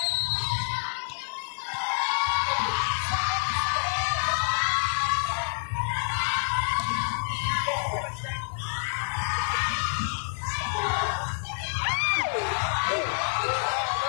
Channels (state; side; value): silent; right; digital silence